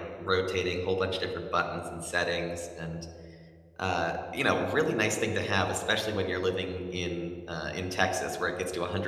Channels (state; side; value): identical; both; correlation 1.00